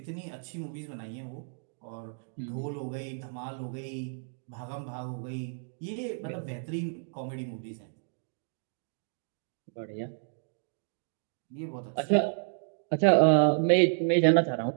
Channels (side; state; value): left; silent; digital silence